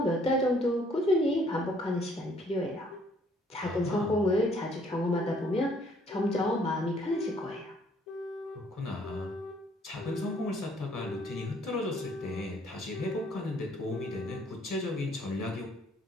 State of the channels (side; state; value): both; normal; correlation 0.63